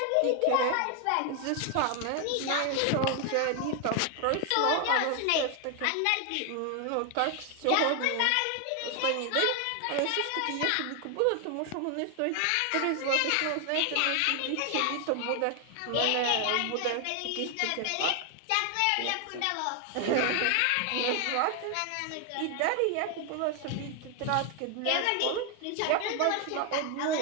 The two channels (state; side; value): different; both; correlation 0.00